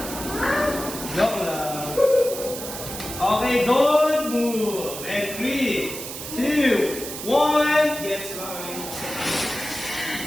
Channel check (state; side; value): noise; right; hiss, 8 dB below the sound